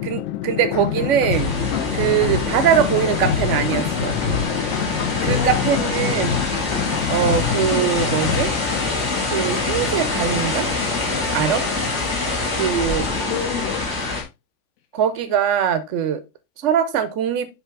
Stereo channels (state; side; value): late; right; 3.5 ms